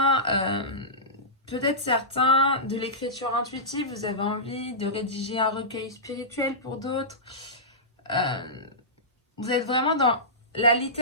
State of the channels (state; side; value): normal; both; correlation -0.17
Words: peut-être certains, de l'écriture intuitive. Vous avez envie de rédiger un recueil spirituel pour d'autres. Vous êtes vraiment dans la